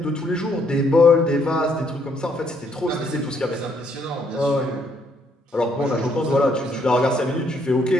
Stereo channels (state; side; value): normal; both; correlation 0.70